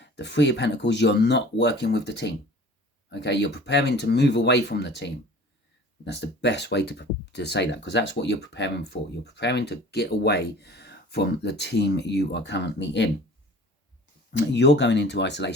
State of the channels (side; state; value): both; normal; correlation 0.45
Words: the 3 of Pentacles, you're not working with the team. Okay, you're preparing to move away from the team. That's the best way to say that, because that's what you're preparing for. You're preparing to get away from the team you are currently in. You're going into